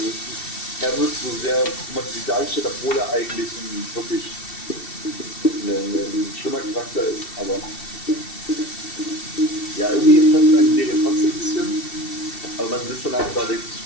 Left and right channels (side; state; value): right; late; 2.7 ms